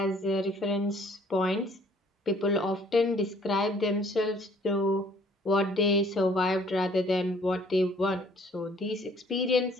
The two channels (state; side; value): normal; both; correlation 0.59